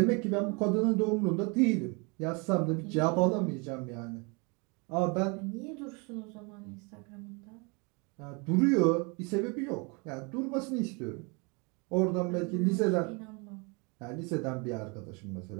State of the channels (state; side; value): quieter; left; 31.1 dB